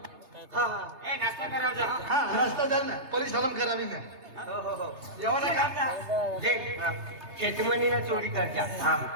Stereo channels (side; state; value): left; late; 3.3 ms